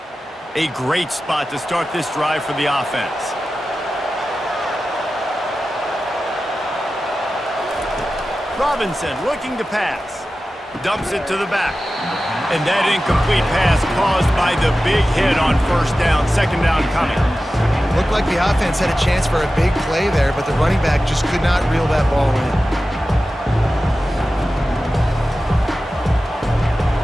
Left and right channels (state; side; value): normal; both; correlation 0.94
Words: A great spot to start this drive for the offense. Robinson looking to pass. Dumps it to the back. And that incomplete pass caused by the big hit on 1st down. 2nd down coming. Looked like the offense had a chance for a big play there, but the running back just could not reel that ball in.